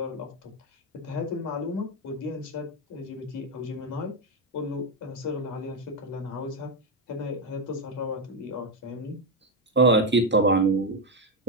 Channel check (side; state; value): both; normal; correlation 0.06